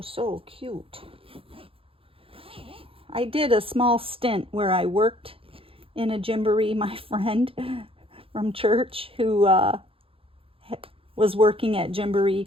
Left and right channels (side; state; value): left; late; 0.27 ms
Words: so cute. I did a small stint where I worked in a Gymboree. My friend from church who was working at Gymboree